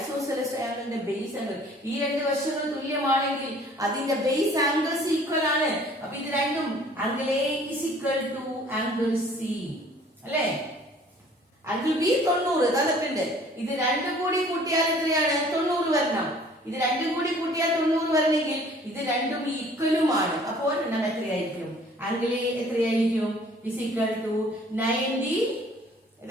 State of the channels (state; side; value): normal; both; correlation 0.54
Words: ട്രയാംഗിളിന്റെ ബേസ് ആംഗിൾ. ഈ 2 വശങ്ങൾ തുല്യമാണെങ്കിൽ അതിന്റെ ബേസ് ആംഗിൾസ് ഈക്വൽ ആണ്. അപ്പൊ ഇത് രണ്ടും angle A is equal to angle C അല്ലെ. ആംഗിൾ ബി 90 തന്നിട്ടുണ്ട്. ഇത് 2 കൂടി കൂട്ടിയാൽ എത്രയാണ്? 90 വരണം. ഇത് 2 കൂടി കൂട്ടിയാൽ 90 വരണമെങ്കിൽ ഇത് രണ്ടും ഈക്വലുമാണ്. അപ്പോൾ ഒരെണ്ണം എത്രയായിരിക്കും? ആംഗിൾ എ എത്രയായിരിക്കും? Is equal to 90.